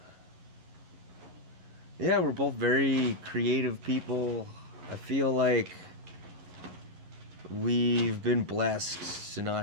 Yeah, we're both very creative people. I feel like we've been blessed to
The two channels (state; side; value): late; left; 11 ms